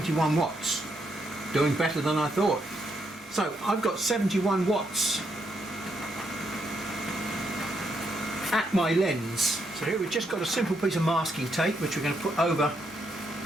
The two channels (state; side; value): normal; both; correlation 0.77